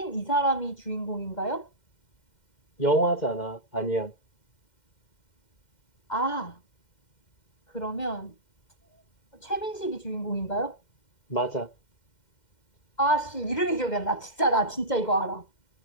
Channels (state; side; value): late; right; 2.1 ms